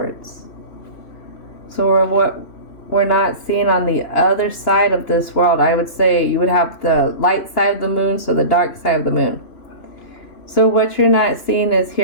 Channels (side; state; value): right; late; 2.9 ms